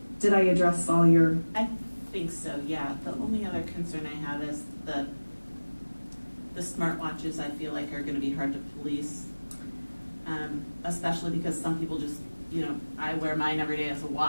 did I address all your? I think so, yeah. The only other concern I have is the smartwatches I feel like are gonna be hard to police. Especially because some people just, I wear mine every day as a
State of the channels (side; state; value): both; inverted; correlation -1.00